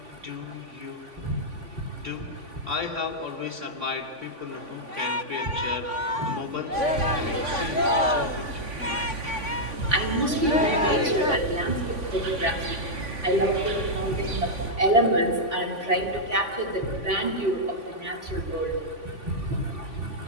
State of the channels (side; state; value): left; late; 3.5 ms